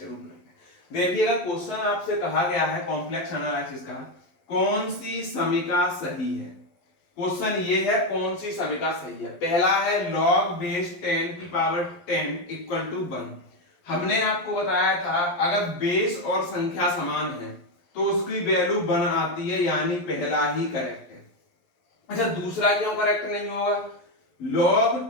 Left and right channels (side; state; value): right; late; 12 ms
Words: कर लें। देखिएगा क्वेश्चन आपसे कहा गया है कॉम्प्लेक्स एनालिसिस का, कौन सी समीकरण सही है। क्वेश्चन ये है कौन सी समीकरण सही है। पहला है log बेस 10 की पावर 10 इक्वल टू 1। हमने आपको बताया था अगर बेस और संख्या समान है तो उसकी वैल्यू 1 आती है, यानी पहला ही करेक्ट है। अच्छा, दूसरा क्यों करेक्ट नहीं होगा। log